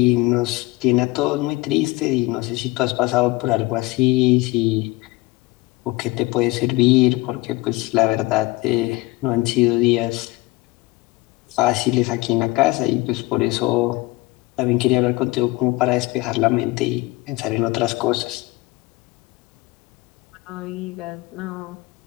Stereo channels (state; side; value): quieter; right; 21.1 dB